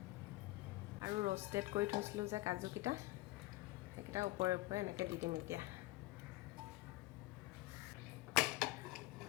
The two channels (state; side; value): quieter; right; 19.3 dB